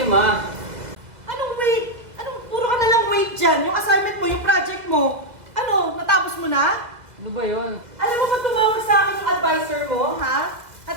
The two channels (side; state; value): left; late; 2.0 ms